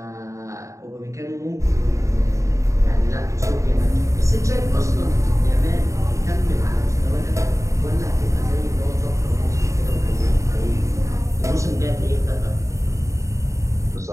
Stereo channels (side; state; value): left; late; 0.15 ms